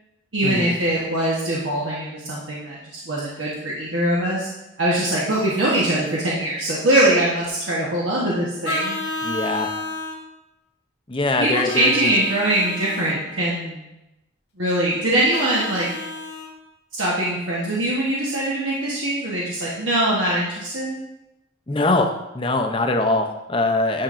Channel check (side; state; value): both; normal; correlation 0.15